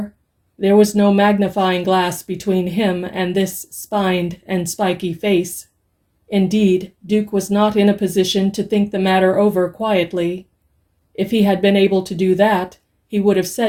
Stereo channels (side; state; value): both; identical; correlation 1.00